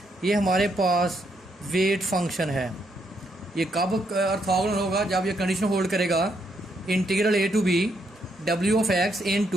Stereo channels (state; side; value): normal; both; correlation 0.76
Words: ये हमारे पास wait function है। ये कब ऑर्थोगोनल होगा? जब ये कंडीशन होल्ड करेगा integral a to b w of x